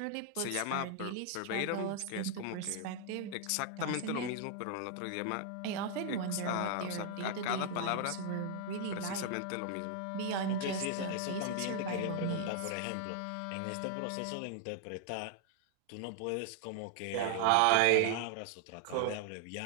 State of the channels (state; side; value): different; both; correlation 0.00